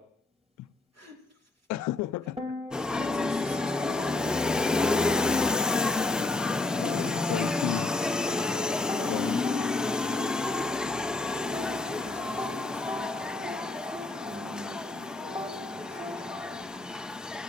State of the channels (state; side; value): quieter; right; 3.1 dB